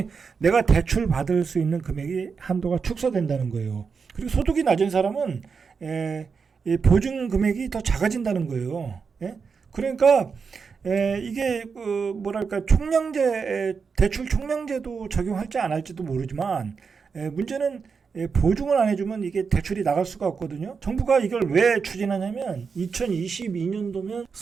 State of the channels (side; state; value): left; quieter; 5.5 dB